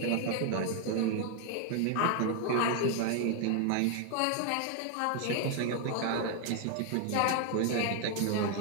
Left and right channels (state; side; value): different; both; correlation 0.00